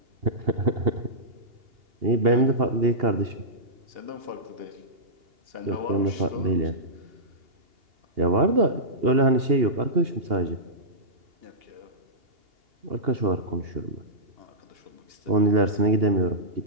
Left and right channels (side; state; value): left; late; 2.8 ms